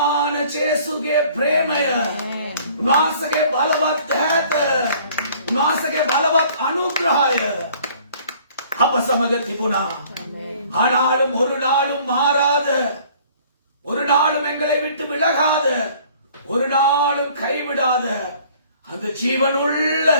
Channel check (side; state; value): both; inverted; correlation -0.55